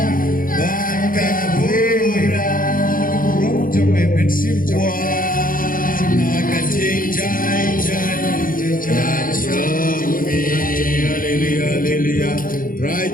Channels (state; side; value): late; right; 0.40 ms